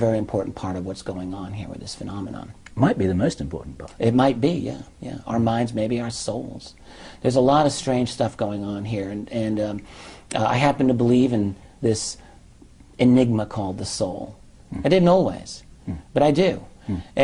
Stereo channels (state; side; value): identical; both; correlation 1.00